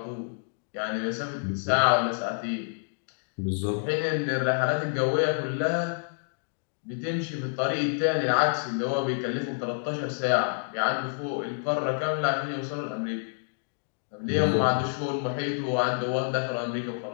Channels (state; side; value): silent; right; digital silence